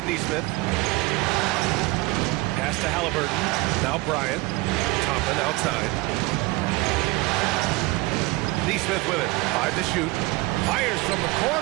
Neesmith. Pass to Halliburton. Now Bryant. Toppin outside. Neesmith with it. 5 to shoot. Fires from the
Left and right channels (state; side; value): quieter; left; 22.4 dB